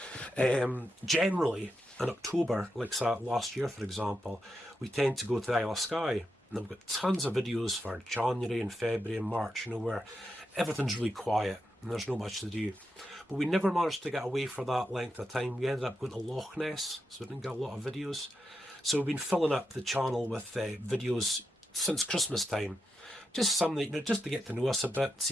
Generally, in October, like last year for example, we tend to go to the Isle of Skye, and I've got tons of videos for January and February and March, you know, where everything's really quiet. and there's not much to do. But we never managed to get away for that length of time. We ended up going to Loch Ness, so we didn't get a lot of videos. So we've been filling up the channel with videos since Christmas time. Just some that, just to get to know us a bit,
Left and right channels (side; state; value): both; normal; correlation 0.86